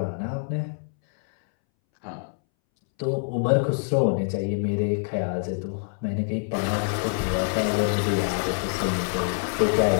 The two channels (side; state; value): right; silent; 61 dB below the other